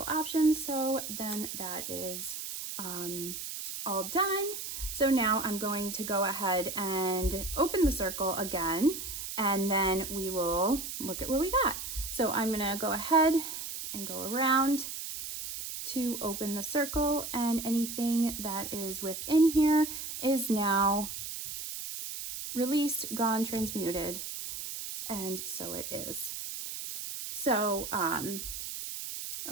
options. So then that is all done. So now I'm going to go ahead and open the circle again, and then we will look at what we got. So I'm gonna go ahead and go around to open the circle, and anything that is within here is now released, gone, transmuted, and so it is. So,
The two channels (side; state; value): right; noise; hiss, 7 dB below the sound